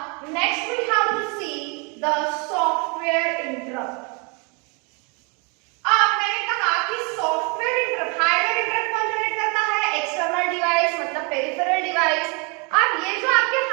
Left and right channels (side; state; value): left; quieter; 32.8 dB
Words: next we have to see the software interrupt. अब मैंने कहा कि सॉफ्टवेयर इंटरप्ट, हार्डवेयर इंटरप्ट कौन जनरेट करता है? एक्सटर्नल डिवाइस, मतलब पेरिफेरल डिवाइस। अब ये जो आपके